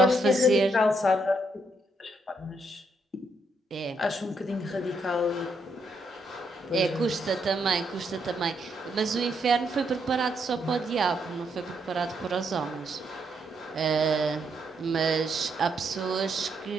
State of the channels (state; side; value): normal; both; correlation 0.76